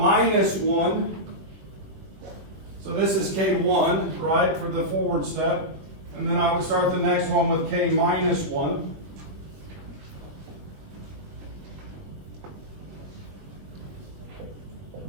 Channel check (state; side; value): late; left; 21 ms